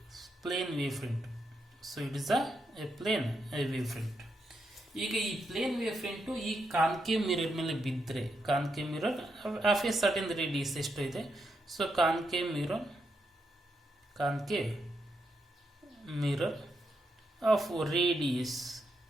plane wave front. So it is a plane wave front. ಈಗ ಈ ಪ್ಲೇನ್ ವೇವ್ ಫ್ರಂಟು ಈ ಕಾನ್ಕೇವ್ ಮಿರರ್ ಮೇಲೆ ಬಿದ್ದರೆ, concave mirror of a certain radius ಎಷ್ಟು ಇದೆ? So concave mirror of radius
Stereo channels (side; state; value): both; normal; correlation 0.82